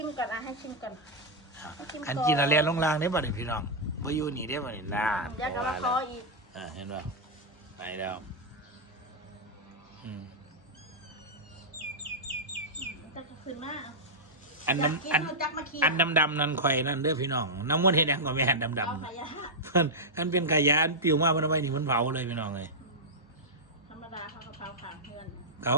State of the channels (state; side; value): normal; both; correlation -0.07